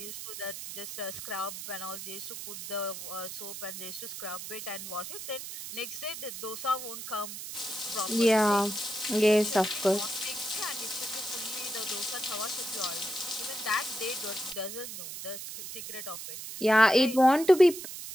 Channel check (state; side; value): noise; right; hiss, 9 dB below the sound